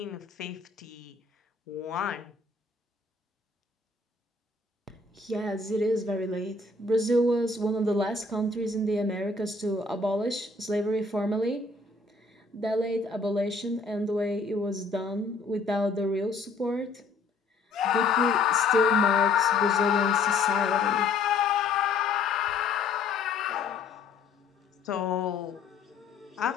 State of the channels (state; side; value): quieter; right; 3.8 dB